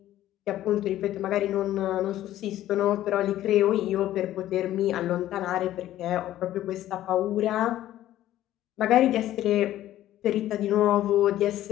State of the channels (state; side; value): quieter; right; 13.5 dB